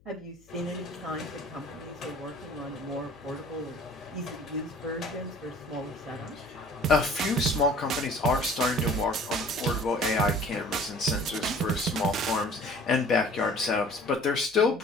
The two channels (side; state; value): left; noise; hum, 29 dB below the sound